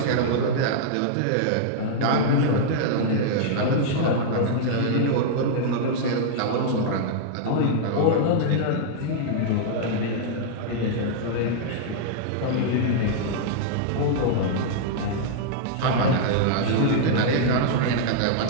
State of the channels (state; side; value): different; both; correlation -0.01